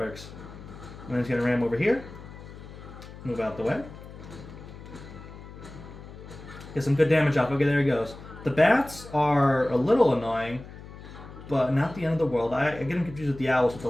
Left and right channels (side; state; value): left; noise; hum, 15 dB below the sound